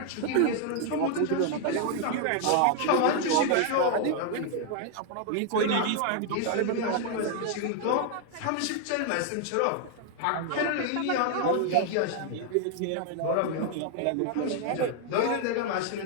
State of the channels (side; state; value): both; different; correlation 0.00